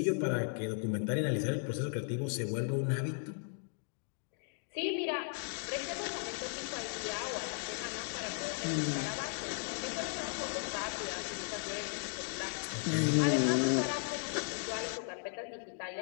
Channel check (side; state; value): right; silent; 54 dB below the other